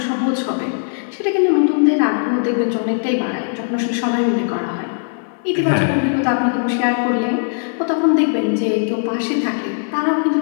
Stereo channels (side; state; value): right; silent; 58 dB below the other